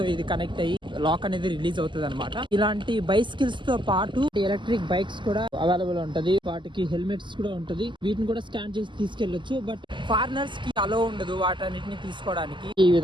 ఇది కనెక్ట్ అయ్యి లాక్ అనేది రిలీజ్ అవుతుంది అనమాట. ఇలాంటి బైసికల్స్ తో పాటు ఎలక్ట్రిక్ బైక్స్ కూడా అవైలబుల్ ఉంటది. వాటికి హెల్మెట్స్ కూడా ఉంటది. వీటిని కూడా స్కాన్ చేసి తీసుకెళ్లొచ్చు. బట్ ఫారినర్స్ కి అలో ఉండదు వాటన్నిటిని తీసుకోవడానికి. ఈ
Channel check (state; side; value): late; left; 0.23 ms